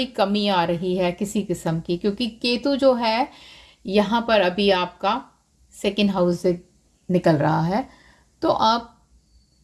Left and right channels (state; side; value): identical; both; correlation 1.00